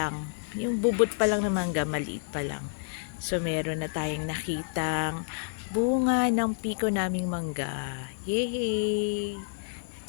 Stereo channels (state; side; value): silent; right; digital silence